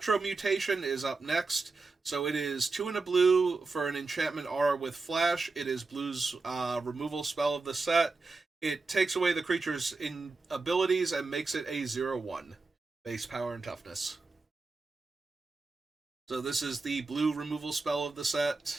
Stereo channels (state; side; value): quieter; left; 3.8 dB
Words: Mutation is up next. So it is 2 and a blue for an enchantment aura with flash. It is blue's removal spell of the set. It takes away the creature's abilities and makes it a 0/1 base power and toughness. So this is the blue removal spell of the